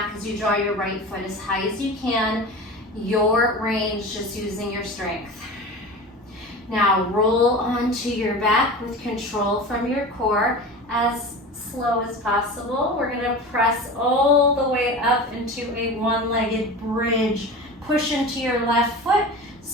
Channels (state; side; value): normal; both; correlation 0.32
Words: as you draw your right foot as high as you can. Your range, just using your strength. Now, roll onto your back with control from your core as slow as possible. We're gonna press all the way up into a one-legged bridge. Push into your left foot,